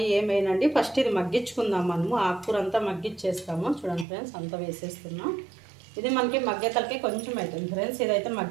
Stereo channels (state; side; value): drops out; left; at 4.0 s